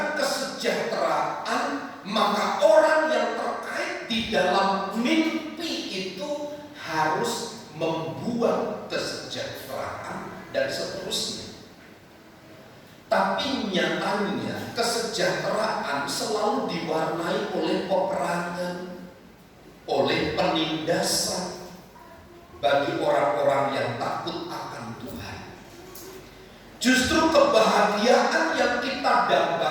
kesejahteraan, maka orang yang terkait di dalam mimpi itu harus membuat kesejahteraan dan seterusnya? Tapi nyatanya kesejahteraan selalu diwarnai oleh peperangan, oleh penindasan bagi orang-orang yang takut akan Tuhan. Justru kebahagiaan yang kita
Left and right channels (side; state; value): both; identical; correlation 1.00